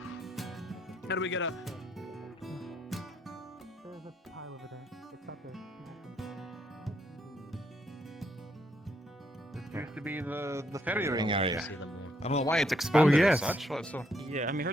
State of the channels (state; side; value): normal; both; correlation 0.74